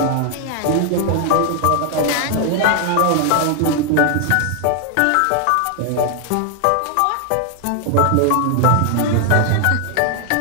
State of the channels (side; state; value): both; different; correlation 0.00